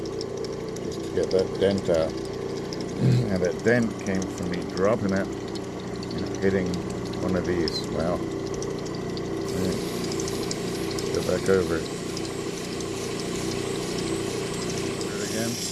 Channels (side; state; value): both; identical; correlation 1.00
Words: just to get that dent out. And that dent came from me dropping it and hitting one of these. Wow. Right. Go back over it. Do it again.